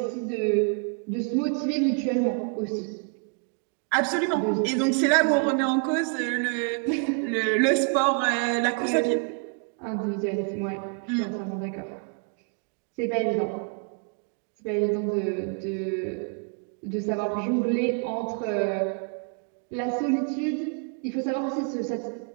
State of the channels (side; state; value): left; quieter; 39.6 dB